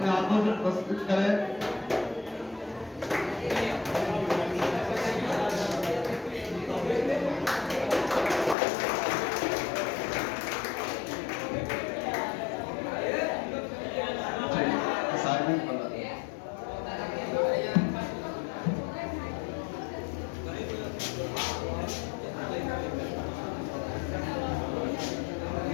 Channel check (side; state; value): right; drops out; at 8.6 s